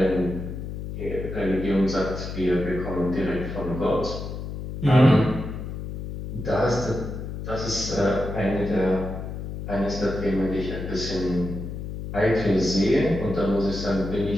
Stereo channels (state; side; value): noise; left; hum, 7 dB below the sound